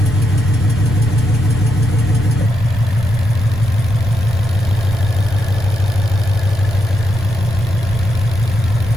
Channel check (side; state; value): right; noise; rumble, 11 dB below the sound